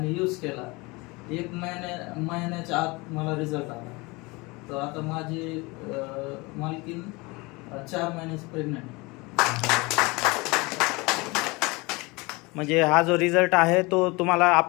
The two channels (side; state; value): right; quieter; 25.1 dB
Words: यूज केला. 1 महिन्याच्या आत मला रिझल्ट आला. तर आता माझी मालकीन 4 महिन्याची प्रेग्नंट. म्हणजे हा जो रिझल्ट आहे तो तुम्हाला